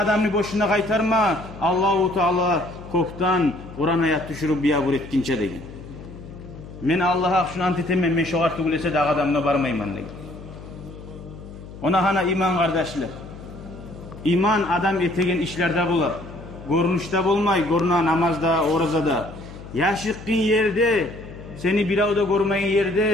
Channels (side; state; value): left; noise; hum, 15 dB below the sound